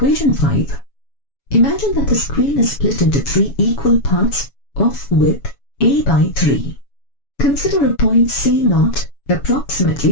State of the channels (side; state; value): right; late; 7.1 ms